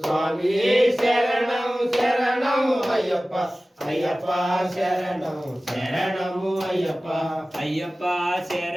శరణం శరణం అయ్యప్ప అయ్యప్ప శరణం శరణము అయ్యప్ప అయ్యప్ప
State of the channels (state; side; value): normal; both; correlation 0.97